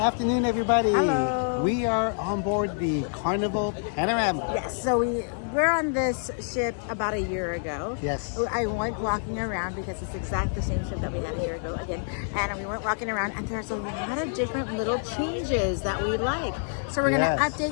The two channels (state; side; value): silent; right; 60 dB below the other